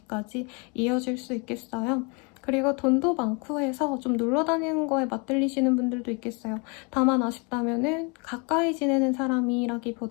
이어질 수 있겠어요. 그리고 돈도 많고 해서 좀 놀러 다니는 거에 맞들리시는 분들도 있겠어요. 다만 아쉽다면은 가까이 지내는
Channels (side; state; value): right; quieter; 32.4 dB